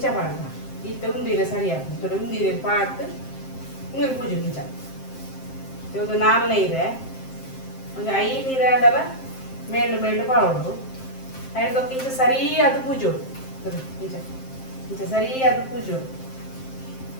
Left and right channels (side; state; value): right; late; 7.6 ms